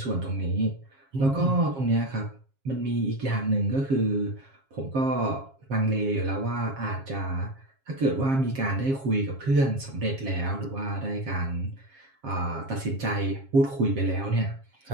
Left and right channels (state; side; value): late; left; 7.4 ms